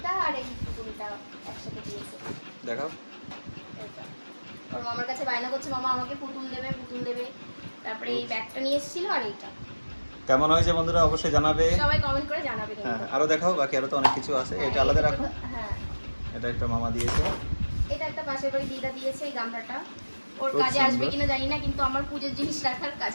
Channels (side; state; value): both; inverted; correlation -1.00